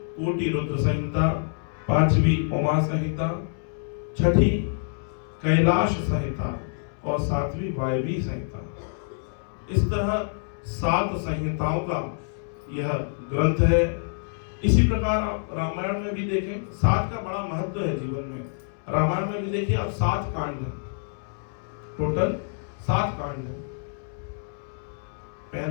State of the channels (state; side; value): silent; right; 61 dB below the other